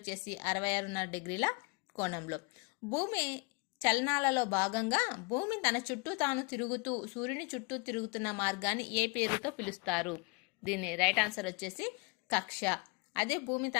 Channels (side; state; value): right; quieter; 30.6 dB